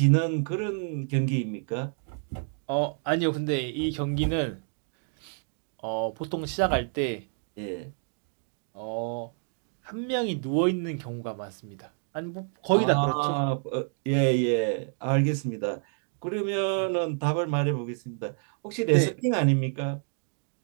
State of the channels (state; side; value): silent; left; 56 dB below the other